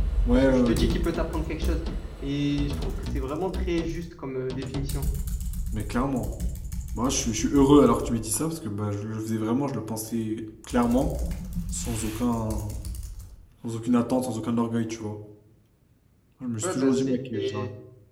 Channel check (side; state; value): both; identical; correlation 1.00